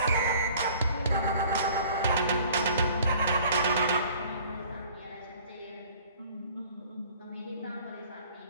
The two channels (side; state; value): both; inverted; correlation -0.51